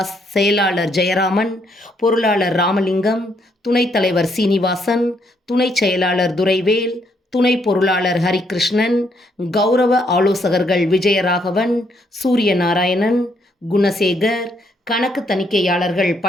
செயலாளர் ஜெயராமன், பொருளாளர் ராமலிங்கம், துணைத் தலைவர் சீனிவாசன், துணை செயலாளர் துரைவேல், துணை பொருளாளர் ஹரிகிருஷ்ணன், கௌரவ ஆலோசகர்கள் விஜயராகவன், சூரியநாராயணன், குணசேகர், கணக்கு தணிக்கையாளர்கள்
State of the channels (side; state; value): both; normal; correlation 0.73